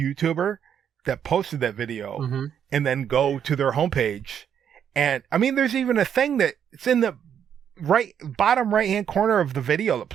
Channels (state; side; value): quieter; left; 8.6 dB